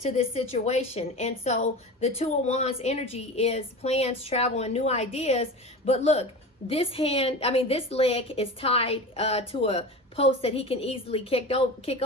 this situation. And so the Two of Wands energy is plans, travel, and new ideas. But look, this leg is tied to a post that he can easily kick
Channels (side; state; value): both; normal; correlation 0.30